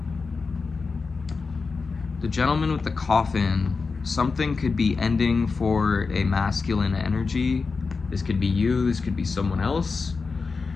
the Gentleman with the Coffin, something could be ending for a masculine energy. This could be you, this could be someone else.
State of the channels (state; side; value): quieter; right; 4.5 dB